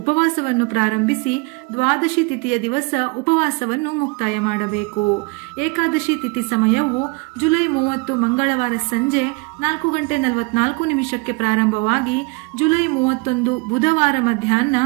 ಉಪವಾಸವನ್ನು ಪ್ರಾರಂಭಿಸಿ ದ್ವಾದಶಿ ತಿಥಿಯ ದಿವಸ ಉಪವಾಸವನ್ನು ಮುಕ್ತಾಯ ಮಾಡಬೇಕು. ಏಕಾದಶಿ ತಿಥಿ ಸಮಯವು ಜುಲೈ 30 ಮಂಗಳವಾರ ಸಂಜೆ 4:44 ಪ್ರಾರಂಭವಾಗಿ ಜುಲೈ 31 ಬುಧವಾರ ಮಧ್ಯಾಹ್ನ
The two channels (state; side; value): quieter; left; 28.4 dB